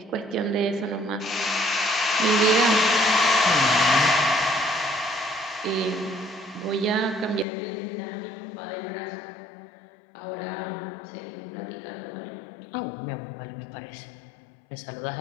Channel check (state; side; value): drops out; right; at 7.5 s